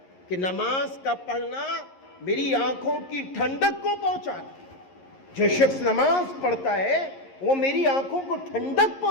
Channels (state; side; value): late; right; 11 ms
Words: کہ نماز کا پڑھنا میری آنکھوں کی ٹھنڈک کو پہنچاتا ہے۔ جو شخص نماز پڑھتا ہے وہ میری آنکھوں کو ٹھنڈک